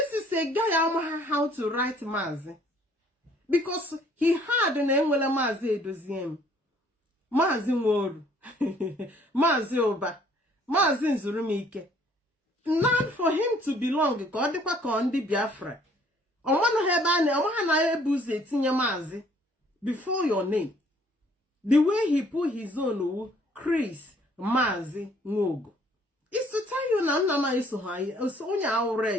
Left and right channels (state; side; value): normal; both; correlation 0.60